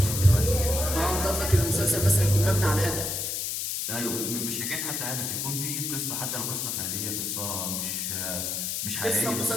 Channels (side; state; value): left; noise; hiss, 2 dB below the sound